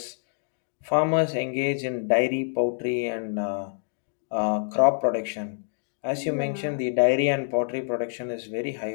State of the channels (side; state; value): right; silent; digital silence